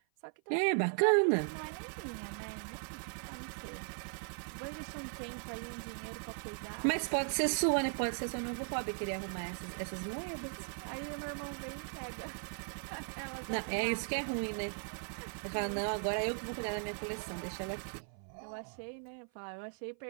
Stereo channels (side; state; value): left; silent; 52 dB below the other